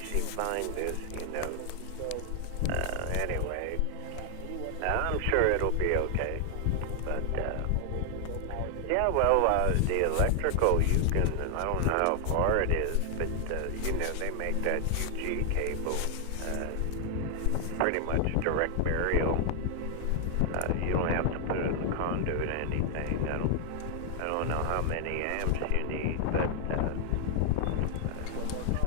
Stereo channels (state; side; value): different; both; correlation 0.00